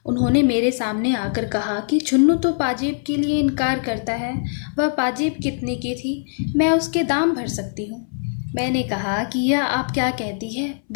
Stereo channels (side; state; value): right; silent; 63 dB below the other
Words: उन्होंने मेरे सामने आकर कहा कि चुन्नू तो पाजेब के लिए इनकार करता है। वह पाजेब कितने की थी, मैं उसके दाम भर सकती हूँ। मैंने कहा कि यह आप क्या कहती है,